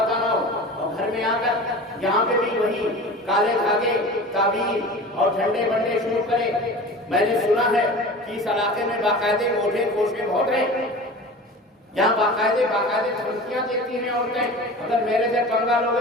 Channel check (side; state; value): both; normal; correlation 0.36